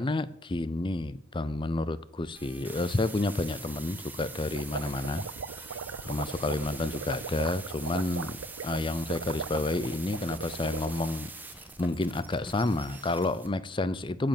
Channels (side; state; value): both; normal; correlation 0.64